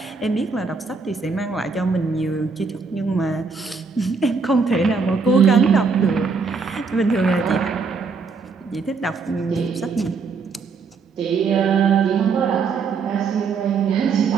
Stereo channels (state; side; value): quieter; left; 4.9 dB